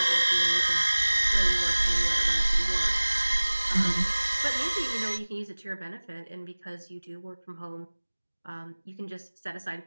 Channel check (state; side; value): inverted; both; correlation -1.00